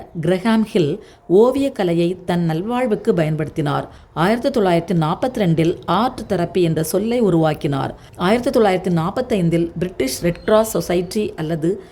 கிரஹாம் ஹில் ஓவியக்கலையை தன் நல்வாழ்வுக்கு பயன்படுத்தினார். 1942 ஆர்ட் தெரப்பி என்ற சொல்லை உருவாக்கினார். 1945 பிரிட்டிஷ் ரெட் கிராஸ் சொசைட்டி அல்லது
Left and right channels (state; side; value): identical; both; correlation 1.00